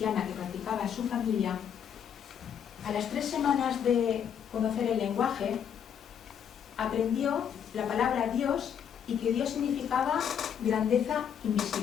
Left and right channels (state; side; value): quieter; right; 8.3 dB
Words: que practicaba su familia, a las 3 semanas de conocer el lenguaje, aprendió la palabra Dios y que Dios significaba grandeza